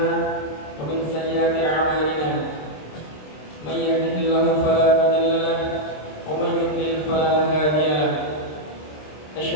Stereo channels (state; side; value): late; right; 26 ms